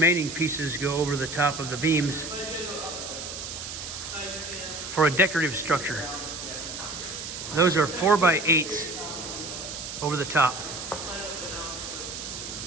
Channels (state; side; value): noise; right; hiss, 8 dB below the sound